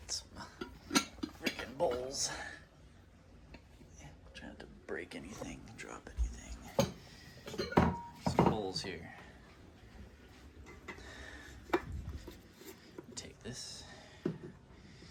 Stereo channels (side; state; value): both; identical; correlation 1.00